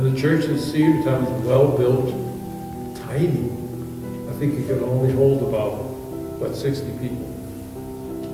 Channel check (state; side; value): identical; both; correlation 1.00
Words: the church in Cedarton is well built, tiny. I think it could only hold about, 60 people.